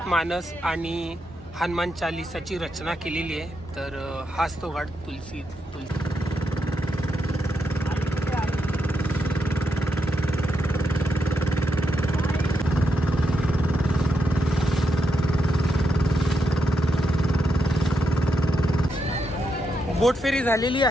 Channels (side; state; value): both; normal; correlation 0.83